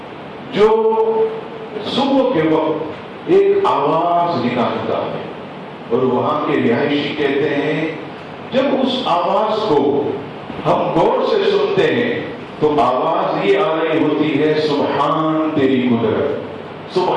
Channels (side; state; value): both; identical; correlation 1.00